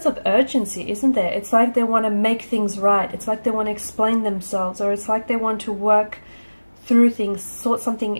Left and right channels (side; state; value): both; inverted; correlation -1.00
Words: of urgency, isn't there? It's like they want to make things right. It's like they want to explain themselves, or it's like they want to work through things, sort